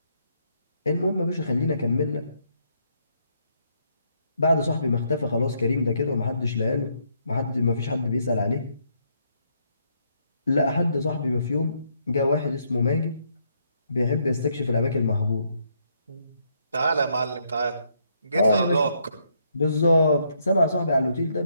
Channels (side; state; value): both; inverted; correlation -0.74